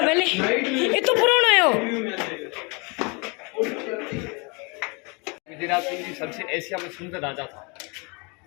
पहले ये तो पुराना है विजयराज सिंह जी सबसे एशिया में सुंदर राजा था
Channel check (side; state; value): right; quieter; 30.9 dB